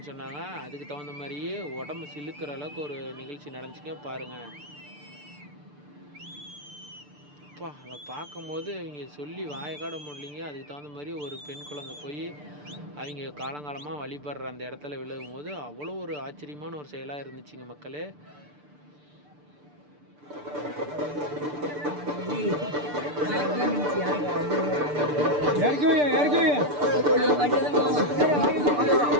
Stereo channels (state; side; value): late; left; 6.8 ms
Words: சொன்னாங்க. அதுக்கு தகுந்த மாதிரியே உடம்பு சிலுக்கிற அளவுக்கு ஒரு நிகழ்ச்சி நடந்துச்சுங்க பாருங்கள். அப்பா அதை பார்க்கும்போது அவங்க சொல்லி வாயக்காட முடியலைங்க. அதுக்கு தகுந்த மாதிரி ஒரு பெண் குழந்தை போய் அவங்க காலங்காலமாக வழிபடுற அந்த இடத்துல விழுகும் போது அவ்வளோ ஒரு ஆச்சரியமான ஒரு செயலாக இருந்துச்சுங்க மக்களே.